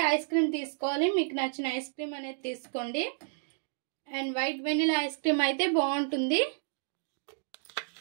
ఐస్ క్రీమ్ తీసుకోవాలి. మీకు నచ్చిన ఐస్ క్రీమ్ అనేది తీసుకోండి. And white vanilla ice cream అయితే బాగుంటుంది.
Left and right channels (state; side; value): silent; left; digital silence